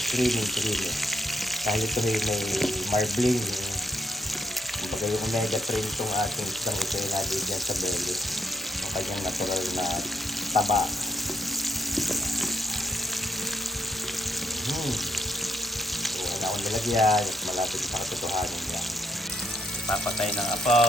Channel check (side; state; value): both; normal; correlation 0.75